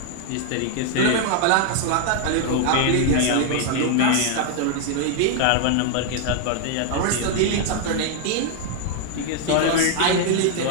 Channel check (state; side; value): different; both; correlation 0.00